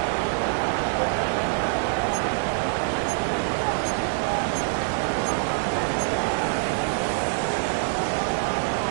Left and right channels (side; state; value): left; silent; 62 dB below the other